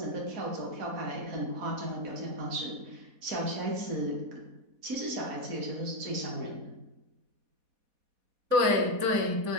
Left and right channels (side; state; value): left; late; 4.1 ms